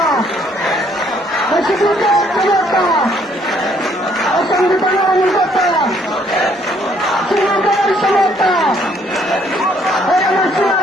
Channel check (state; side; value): normal; both; correlation 0.65